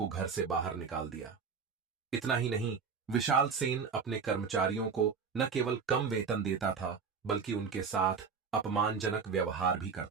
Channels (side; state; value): left; quieter; 5.7 dB